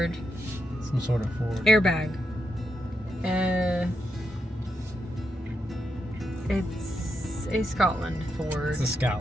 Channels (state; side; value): normal; both; correlation 0.84